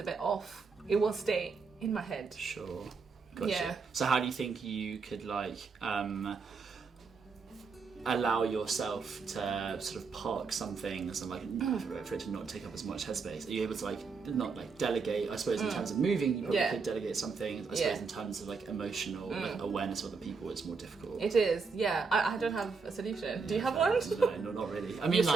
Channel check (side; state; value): left; quieter; 5.0 dB